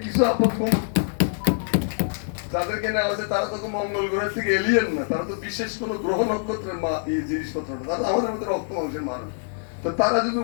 কিছু আপন যাদেরকে নেওয়া হয়েছে তারা তো মঙ্গল গ্রহের থেকে এলিয়েন না, তারা তো বিশেষ কোনো গ্রহ নক্ষত্রের জিনিসপত্র না, তারা আমাদের মধ্যে রক্ত মাংসের মানুষ। তো তারা যদি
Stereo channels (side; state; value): right; silent; 62 dB below the other